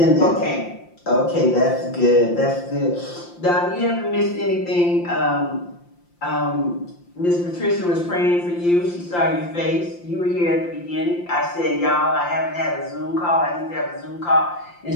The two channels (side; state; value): right; late; 5.8 ms